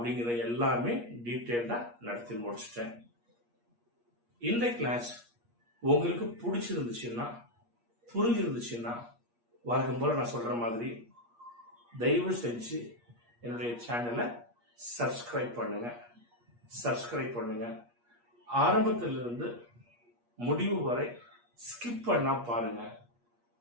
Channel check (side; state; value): left; late; 8.4 ms